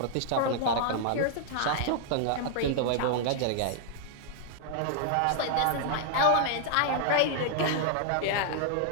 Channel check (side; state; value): both; different; correlation -0.01